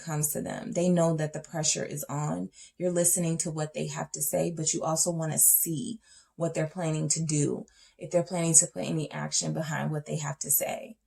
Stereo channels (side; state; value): both; identical; correlation 1.00